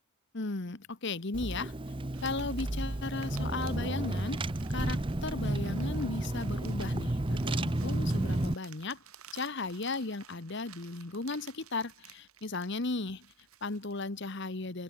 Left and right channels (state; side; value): normal; both; correlation 0.57